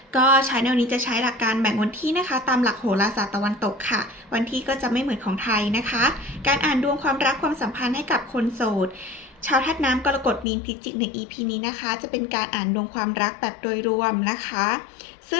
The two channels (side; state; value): right; drops out; at 10.5 s